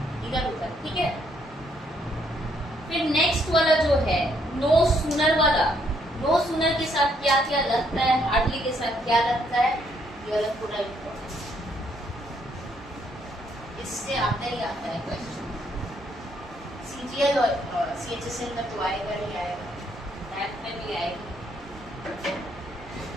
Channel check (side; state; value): both; normal; correlation 0.71